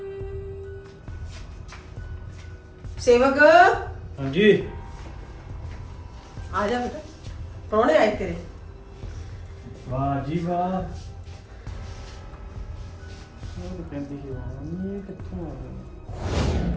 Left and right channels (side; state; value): both; identical; correlation 1.00